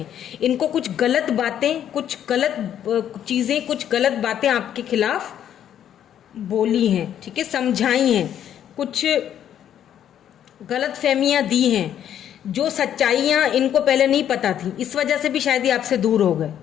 इनको कुछ गलत बातें, कुछ गलत चीज़ें, कुछ गलत बातें आपके खिलाफ बोली हैं, ठीक है, समझाई हैं, कुछ गलत फहमियाँ दी हैं, जो सच्चाइयाँ इनको पहले नहीं पता थी, इस वजह से भी शायद ये आपसे दूर हो गए,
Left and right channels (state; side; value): quieter; right; 10.1 dB